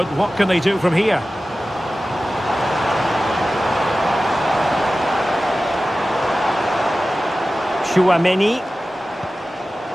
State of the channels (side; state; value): both; normal; correlation 0.95